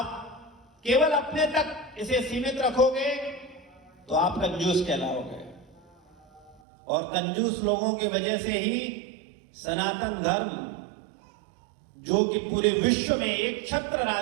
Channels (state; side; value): drops out; left; at 6.6 s